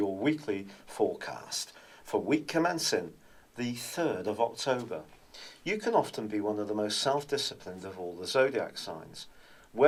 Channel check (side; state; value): both; identical; correlation 1.00